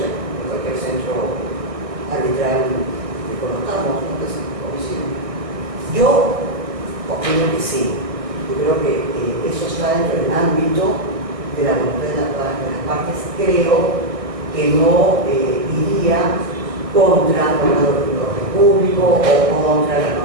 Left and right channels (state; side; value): late; left; 1.6 ms